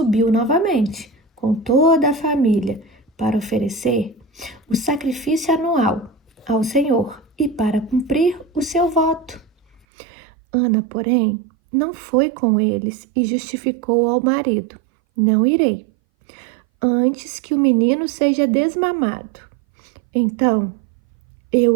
novamente com toda a família para oferecer o sacrifício anual ao Senhor e para cumprir o seu voto. Ana, porém, não foi com eles e justificou ao marido: não irei, antes que o menino seja desmamado. Então, eu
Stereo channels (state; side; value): drops out; left; at 9.8 s